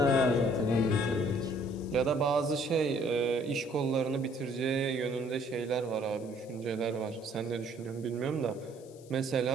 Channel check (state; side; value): noise; left; hiss, 25 dB below the sound